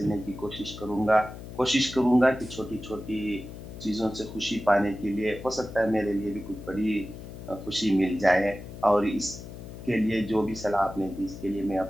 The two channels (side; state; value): left; noise; hum, 12 dB below the sound